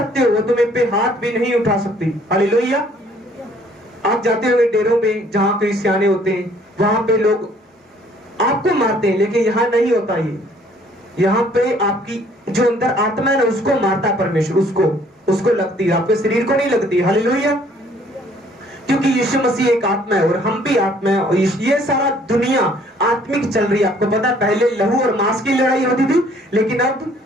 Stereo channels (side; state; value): both; normal; correlation 0.60